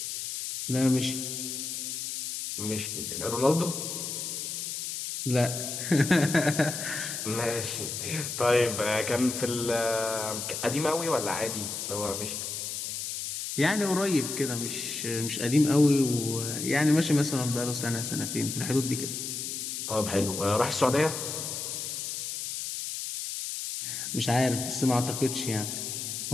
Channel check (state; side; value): noise; left; hiss, 5 dB below the sound